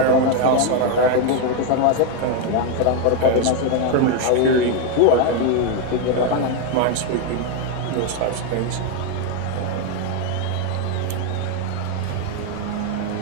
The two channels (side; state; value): both; different; correlation 0.01